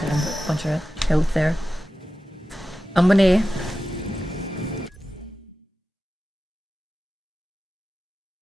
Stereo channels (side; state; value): both; normal; correlation 0.94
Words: a bunch of health there. I'm gonna